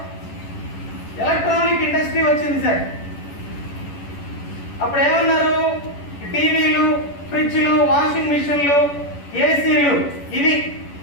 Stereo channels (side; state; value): right; late; 11 ms